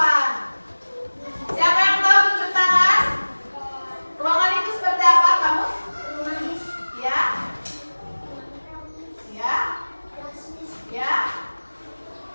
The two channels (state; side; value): inverted; both; correlation -1.00